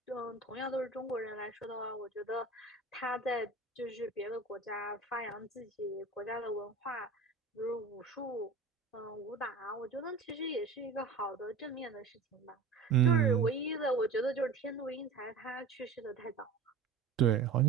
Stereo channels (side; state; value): left; quieter; 4.5 dB